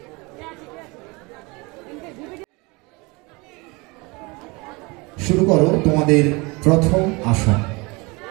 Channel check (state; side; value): quieter; left; 26.2 dB